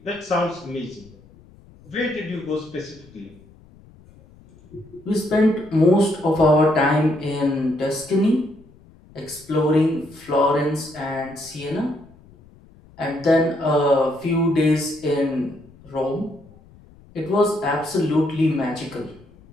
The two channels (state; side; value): noise; left; rumble, 25 dB below the sound